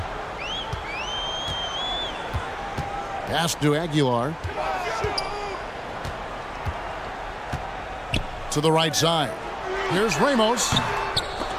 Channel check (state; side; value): identical; both; correlation 1.00